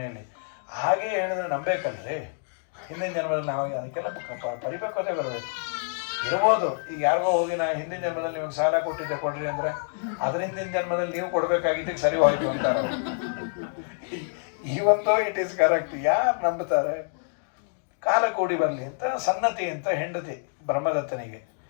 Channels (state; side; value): silent; right; digital silence